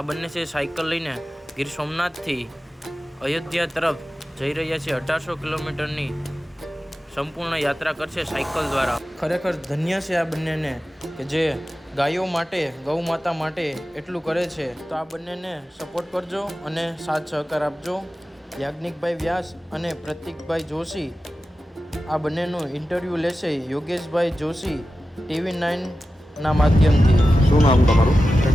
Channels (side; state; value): both; normal; correlation 0.93